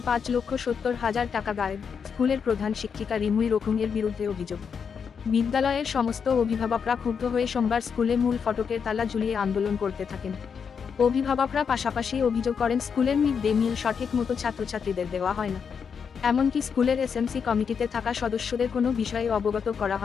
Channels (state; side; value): quieter; right; 6.5 dB